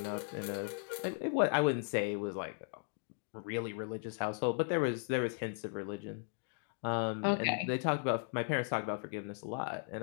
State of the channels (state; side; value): silent; right; digital silence